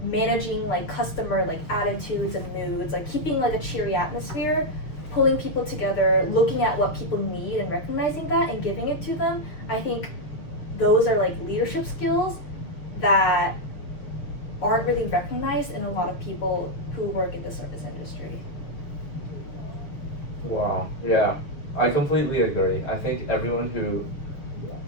managing like customer like attitudes and moods, like keeping like a cheery atmosphere, pulling people together, looking at what people need and recognizing that and giving it to them. I think those are like leadership skills that aren't really recognized in a lot of people who work in the service industry. Wow. Yeah, I completely agree. I think everyone who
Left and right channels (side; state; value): right; late; 6.8 ms